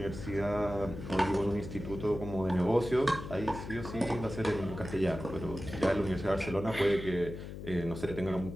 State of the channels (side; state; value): left; noise; hum, 9 dB below the sound